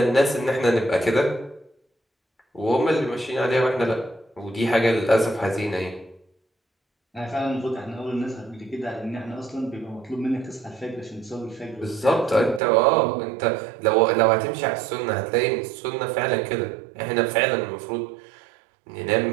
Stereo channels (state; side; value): drops out; left; at 12.6 s